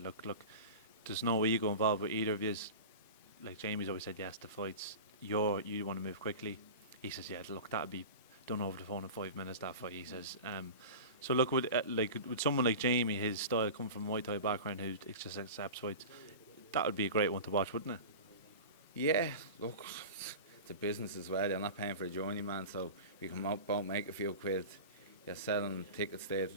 look, there's no ego involved with either of you. Like Jamie's always said yes to fights. You want to move quickly. He says, yeah, look, that'd be done over the phone in 5 minutes. That fight, he says. So look, with someone like Jamie, his style come from a Muay Thai background, who just accepts fights, that would be a great one to watch, wouldn't it? Yeah, look, it's a business as well. You're not paying for a journeyman, so you come out, make a few quid. You're selling tickets day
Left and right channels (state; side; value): inverted; both; correlation -0.31